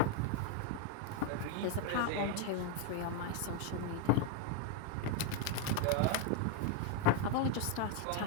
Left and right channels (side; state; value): both; different; correlation 0.01